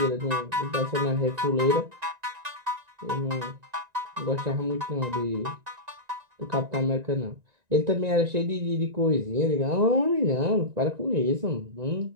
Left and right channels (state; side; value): late; left; 1.9 ms